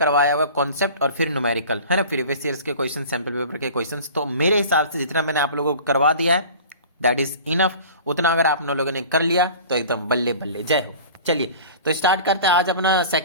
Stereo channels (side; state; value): both; inverted; correlation -0.42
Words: हुआ कॉन्सेप्ट और फिर न्यूमेरिकल है ना, प्रीवियस ईयर्स के क्वेश्चन, सैंपल पेपर के क्वेश्चंस। तो मेरे हिसाब से जितना मैंने आप लोगों को करवा दिया है दैट इज इनफ। उतना अगर आप लोगों ने कर लिया तो एकदम बल्ले बल्ले, जय हो। चलिए तो स्टार्ट करते हैं आज अपना